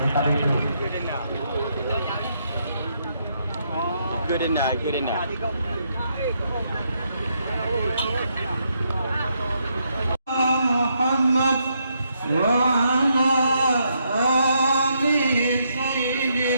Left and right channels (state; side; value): inverted; both; correlation -0.77